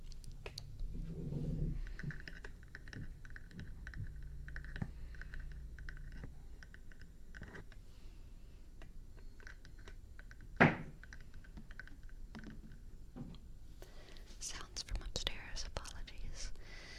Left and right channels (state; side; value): identical; both; correlation 1.00